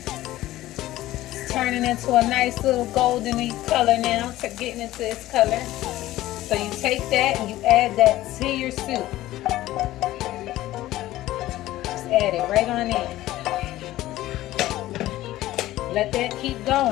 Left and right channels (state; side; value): quieter; right; 15.6 dB